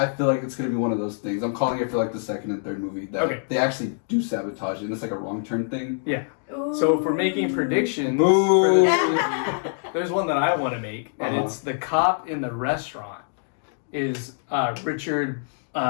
feel like it's going to be one of those things. I'm calling it for the second and third movie. That they actually do sabotage it, and it's a wrong turn thing. Yeah. Ooh. So if we're making predictions for this movie, there's one that I want to make, and it's the cop in the restaurant is Richard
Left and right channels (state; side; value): silent; right; digital silence